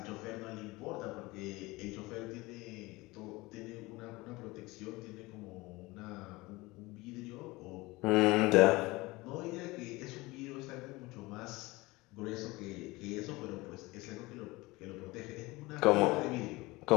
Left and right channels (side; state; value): right; quieter; 21.8 dB